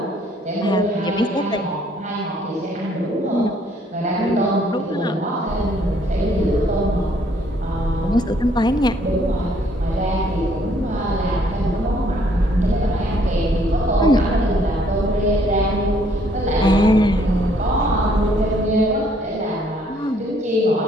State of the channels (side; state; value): both; normal; correlation 0.65